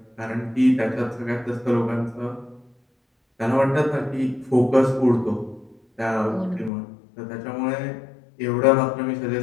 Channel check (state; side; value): drops out; right; at 6.7 s